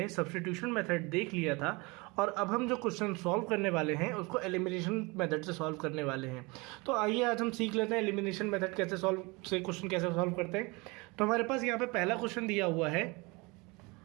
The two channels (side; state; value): left; quieter; 26.1 dB